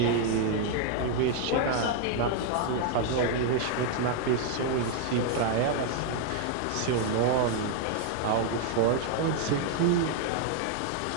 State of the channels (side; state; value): both; different; correlation 0.00